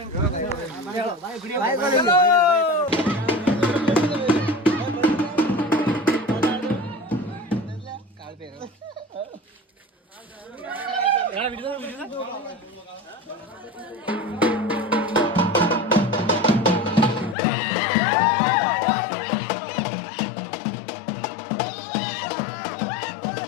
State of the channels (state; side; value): drops out; right; at 17.4 s